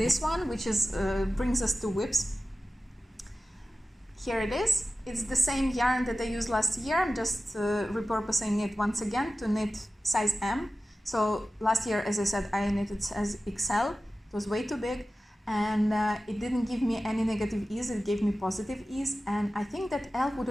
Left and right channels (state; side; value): normal; both; correlation 0.95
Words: one, which is brings us to whips. Here it is. It's the same yarn that I used last year. I'm just repurposing it once again to knit size M. So last year, as I said, I knitted size XL. It was way too big, and it didn't give me any negative ease. It gave me positive ease, and I think that L would